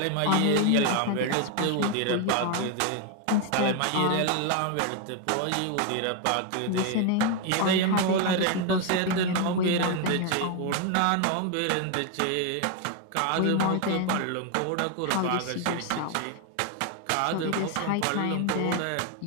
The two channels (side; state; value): both; different; correlation 0.01